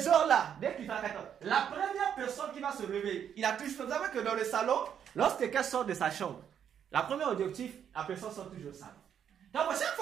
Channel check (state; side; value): quieter; left; 8.7 dB